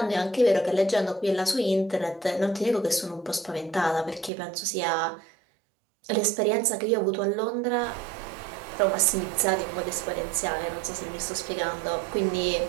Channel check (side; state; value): left; drops out; at 4.3 s